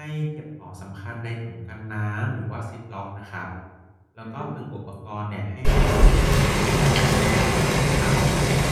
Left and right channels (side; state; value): both; identical; correlation 1.00